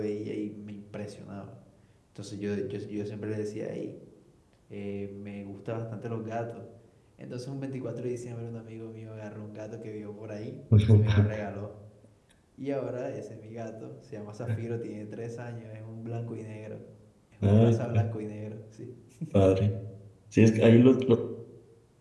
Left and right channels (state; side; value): identical; both; correlation 1.00